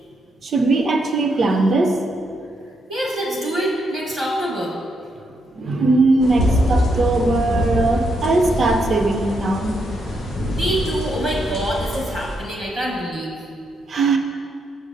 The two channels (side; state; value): both; normal; correlation 0.79